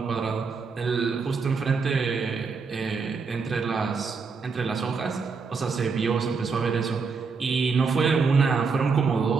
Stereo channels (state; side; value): quieter; left; 5.0 dB